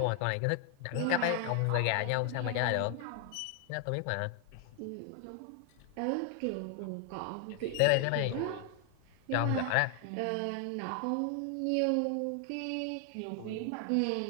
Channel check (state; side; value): different; both; correlation 0.00